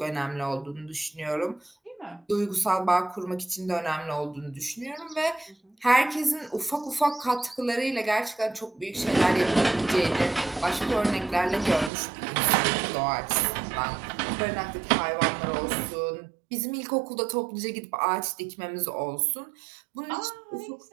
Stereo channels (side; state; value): left; drops out; at 11.9 s